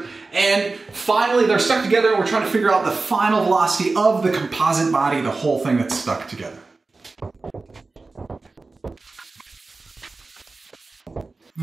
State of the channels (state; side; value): quieter; left; 3.7 dB